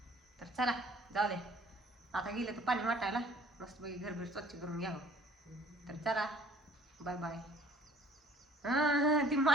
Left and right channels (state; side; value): normal; both; correlation 0.54